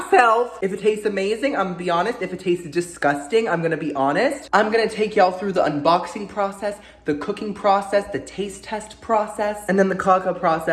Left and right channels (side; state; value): both; identical; correlation 1.00